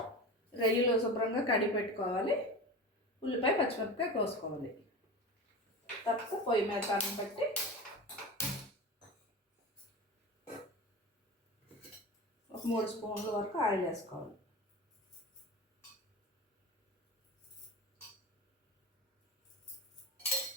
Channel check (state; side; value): normal; both; correlation 0.29